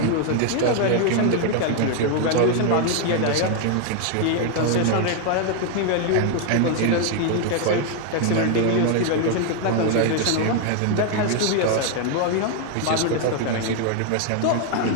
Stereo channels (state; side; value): different; both; correlation 0.00